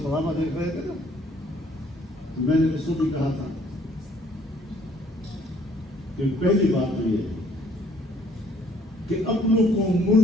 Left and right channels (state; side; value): normal; both; correlation 0.62